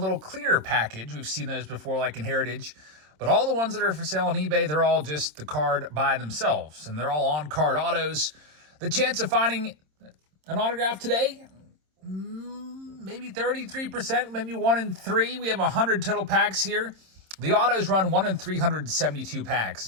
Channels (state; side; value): late; left; 26 ms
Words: clear package. We've seen those before, like in Heritage. But all the ones that are for sale on eBay, they're all just the card by themselves. And they're all on-card autos. The chance of finding an autograph today, maybe 33%, maybe 1 in 3. We have 100 total packs here. The autos run 1 in 372 packs